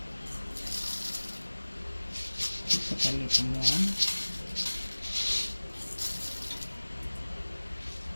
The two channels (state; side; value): inverted; both; correlation -1.00